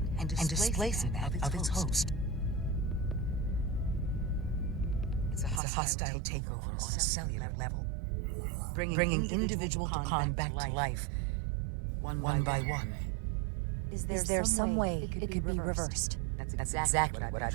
and displacing that of its host. It's a hostile takeover on a cellular level, bringing individual Takan back to life, one by one. Is there some way it could be reversed? That's exactly what I've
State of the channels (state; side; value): drops out; left; at 5.6 s